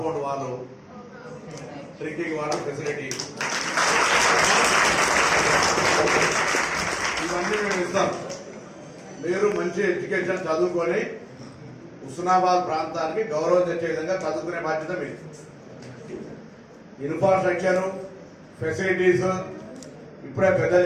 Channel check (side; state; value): both; identical; correlation 1.00